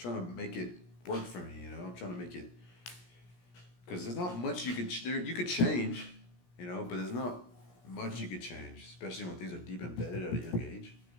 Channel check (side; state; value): right; late; 17 ms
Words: to make it work for me, you know. I'm trying to make it, because there's not much you could change, you know, but there's not much you could change, especially when things are deep embedded at a young age.